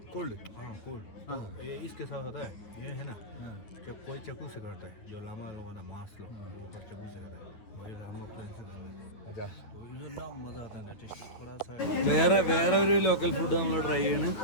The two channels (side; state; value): right; late; 9.3 ms